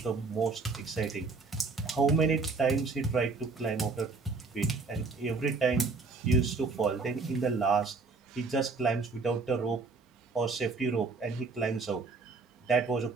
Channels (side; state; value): left; quieter; 4.1 dB